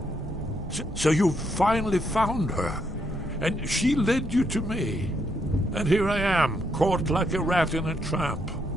So you finally found her, and she led you to me. And here I am, caught like a rat in a trap.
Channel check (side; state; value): both; normal; correlation 0.76